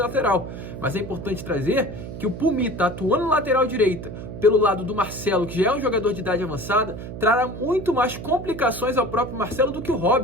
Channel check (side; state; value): right; noise; hum, 10 dB below the sound